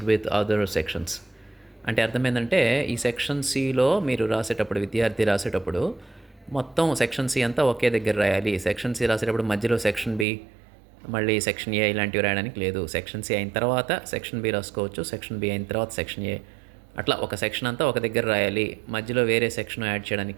with other sections. అంటే అర్థం ఏంటంటే ఈ సెక్షన్ సిలో మీరు రాసేటప్పుడు విద్యార్థి రాసేటప్పుడు మొత్తం సెక్షన్ సి అంతా ఒకే దగ్గర రాయాలి. సెక్షన్ సి రాసేటప్పుడు మధ్యలో సెక్షన్ బి మళ్ళీ సెక్షన్ ఏ ఇలాంటివి రాయడానికి లేదు. సెక్షన్ సి అయిన తర్వాత సెక్షన్ బి రాసుకోవచ్చు, సెక్షన్ బి అయిన తర్వాత సెక్షన్ ఏ, అట్లా ఒక సెక్షన్ అంతా ఒక దగ్గర రాయాలి. మధ్యలో వేరే సెక్షన్ యాడ్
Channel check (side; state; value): left; drops out; at 10.2 s